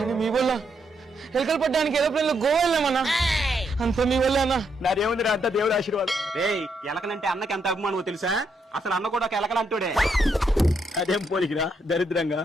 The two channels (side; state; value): both; normal; correlation 0.77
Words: మీ వల్ల ఎలుకలు పట్టడానికి ఏరోప్లేన్ లో గోవా వెళ్ళామన్నా. అంత మీ వల్ల అన్నా. నాదేముంది అంతా దేవుడు ఆశీర్వాదం. రేయ్ ఎలకలంటే అన్నకి ఎంత అభిమానమో తెలుసా? అసలు అన్న కూడా ఒక ఎలకలంటోడే. అదేం పోలికిరా దరిద్రంగా.